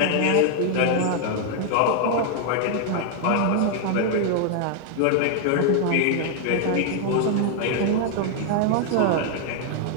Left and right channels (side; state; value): both; different; correlation 0.00